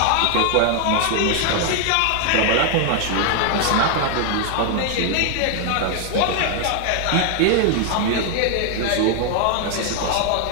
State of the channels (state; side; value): different; both; correlation 0.00